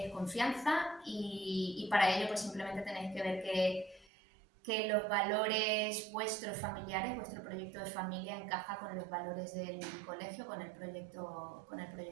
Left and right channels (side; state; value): left; drops out; at 4.0 s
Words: confianza y para ello pues simplemente tenéis que ver que los valores vuestros familiares, vuestro proyecto de familia encaja con los valores del colegio, con el proyecto